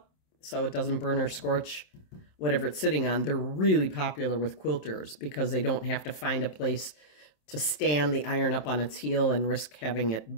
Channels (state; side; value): late; right; 27 ms